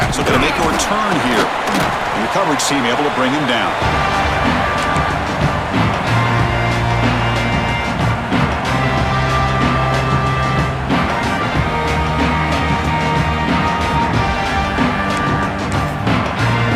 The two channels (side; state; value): both; identical; correlation 1.00